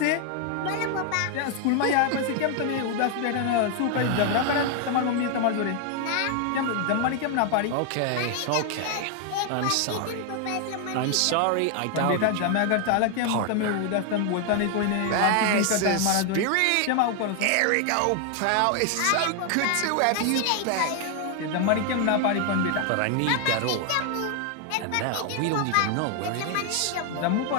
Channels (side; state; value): both; different; correlation 0.00